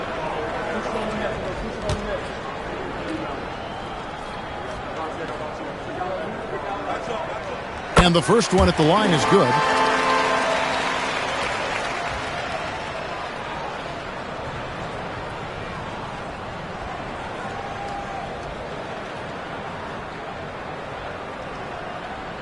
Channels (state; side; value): identical; both; correlation 1.00